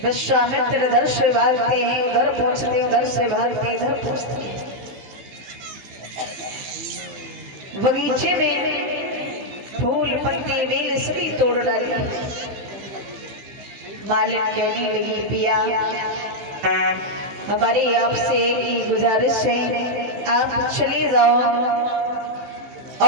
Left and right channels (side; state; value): left; late; 16 ms